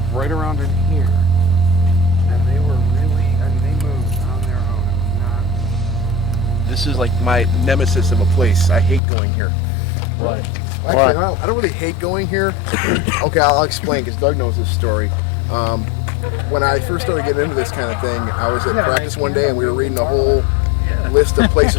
right around in here, and they were really. I mean, they moved on their own. It was not. This is like my nemesis of a place. I hate going here. What? Actually, I don't really hate going here. Okay, I'll explain because Doug knows this story. When I first started getting into this kind of thing, I was at practice one day and we were reading a whole list of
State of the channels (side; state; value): right; drops out; at 9.0 s